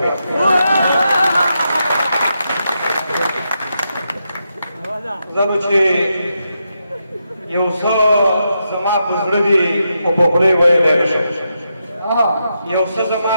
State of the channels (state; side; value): inverted; both; correlation -0.84